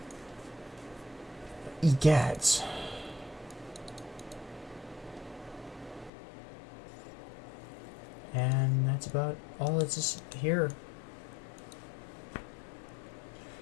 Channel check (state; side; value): drops out; right; at 6.1 s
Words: Egads. And that's about all that's just here.